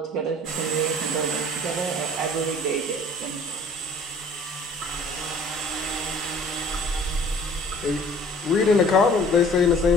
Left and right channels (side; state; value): both; normal; correlation 0.51